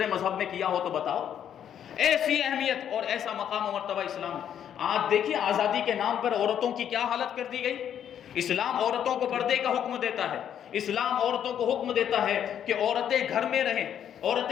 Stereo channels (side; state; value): right; quieter; 9.4 dB